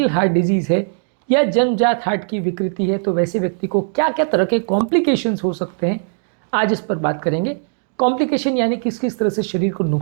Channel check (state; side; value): silent; left; digital silence